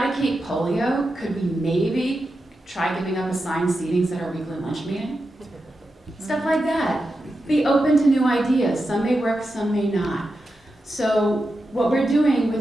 polio, could we maybe try giving up assigned seatings at our weekly lunch meeting? Stuff like that. Be open to new ideas. Some may work, some may not. So what we're doing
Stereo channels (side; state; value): both; normal; correlation 0.89